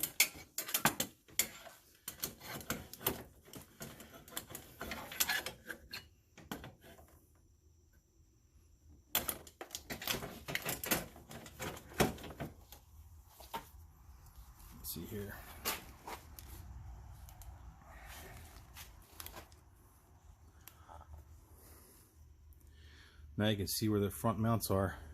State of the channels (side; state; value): both; identical; correlation 1.00